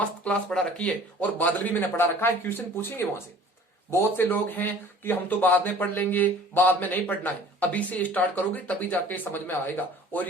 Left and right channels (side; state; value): both; normal; correlation 0.48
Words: क्लास पढ़ा रखी है। और बादल भी मैंने पढ़ा रखा है, क्वेश्चन पूछेंगे वहां से। बहुत से लोग हैं कि हम तो बाद में पढ़ लेंगे, बाद में नहीं पढ़ना है, अभी से स्टार्ट करोगे तभी जाके समझ में आएगा। और